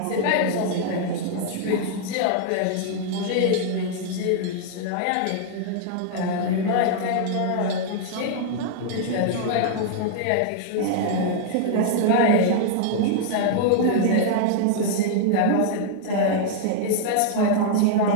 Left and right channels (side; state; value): both; different; correlation -0.01